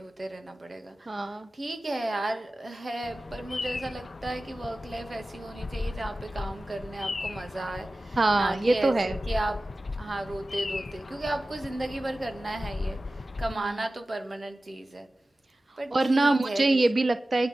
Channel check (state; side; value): normal; both; correlation 0.96